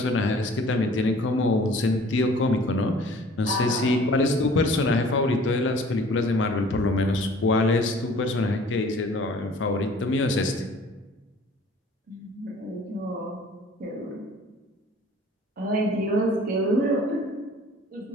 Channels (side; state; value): both; normal; correlation 0.50